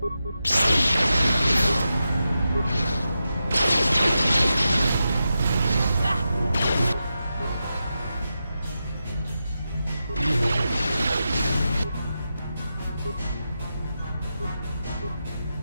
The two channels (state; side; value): inverted; both; correlation -0.89